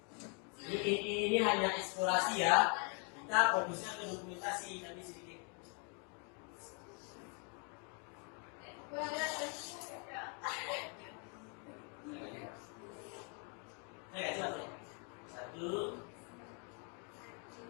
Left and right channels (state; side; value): quieter; right; 37.8 dB